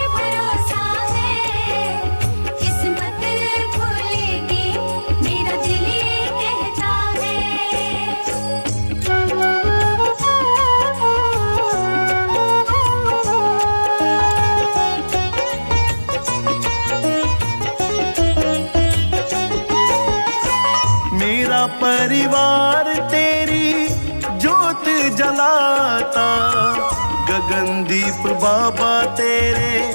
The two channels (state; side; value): inverted; both; correlation -1.00